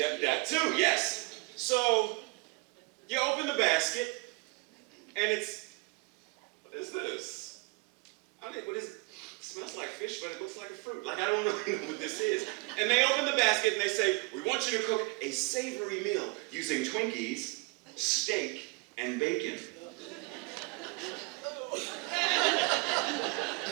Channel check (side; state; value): left; quieter; 28.9 dB